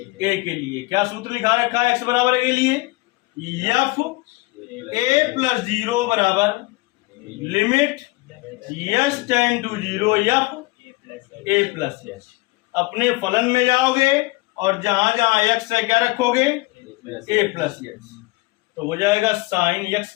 के लिए क्या सूत्र लिखा रखा है एक्स बराबर ए के लिए, एफ ए प्लस 0 बराबर limit s tend to 0 f a plus s. अपने फलन में जाओगे और जहां जहां एक्स है क्या रखोगे, ए प्लस यच, तो हो जाएगा साइन यक्स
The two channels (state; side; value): quieter; right; 23.0 dB